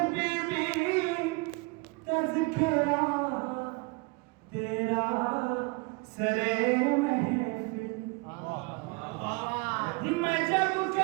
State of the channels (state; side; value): quieter; left; 27.3 dB